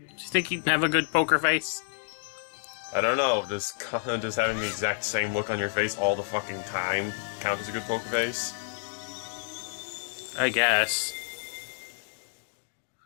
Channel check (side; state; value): right; silent; digital silence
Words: you think he'd have a good poker face? I don't know, does having the exact same look on your face all the fucking time count as a good poker face? I guess.